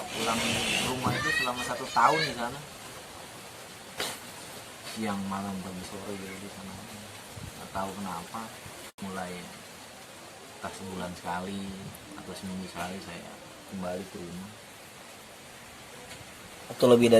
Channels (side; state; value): both; identical; correlation 1.00